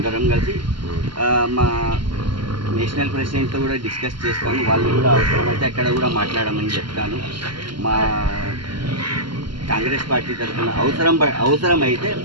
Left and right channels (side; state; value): left; late; 0.72 ms